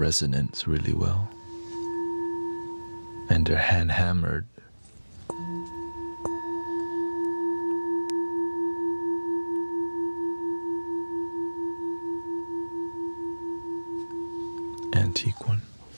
really well. And they're hand hammered. Antique one.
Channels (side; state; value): both; inverted; correlation -1.00